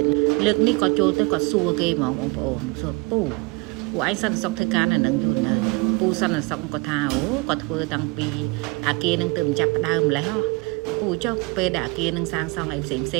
តលើកនេះក៏ចូលទៅគាត់សួរគេហ្មងបងប្អូនសួរពូឯងសន្តិសុខធ្វើការនៅនឹងយូរនៅពូសន្តិសុខគាត់ថាគាត់ធ្វើតាំងពីអាគារនឹងទៅចាប់ផ្ដើមម្លេះពូចុះពេលដែលអាគារនឹងសាងសង់អីផ្សេងហ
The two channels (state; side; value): quieter; left; 27.8 dB